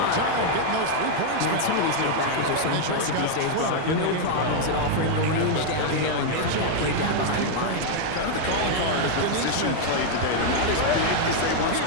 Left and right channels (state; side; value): different; both; correlation 0.00